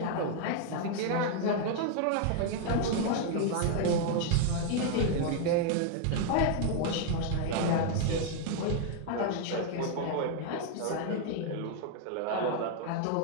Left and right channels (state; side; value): different; both; correlation 0.00